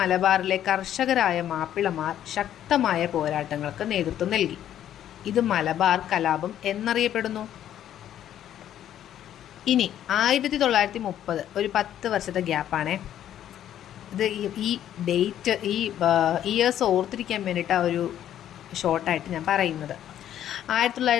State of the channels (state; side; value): quieter; right; 11.0 dB